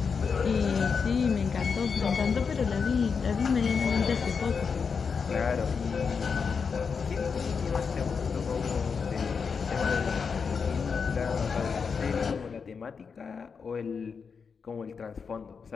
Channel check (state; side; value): quieter; right; 5.7 dB